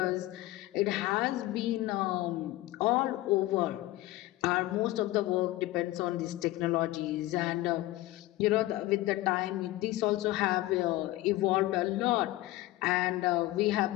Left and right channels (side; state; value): right; quieter; 17.4 dB